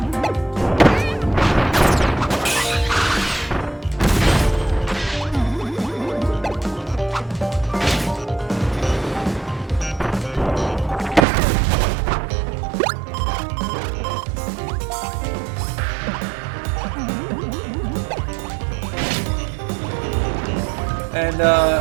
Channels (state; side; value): drops out; left; at 11.2 s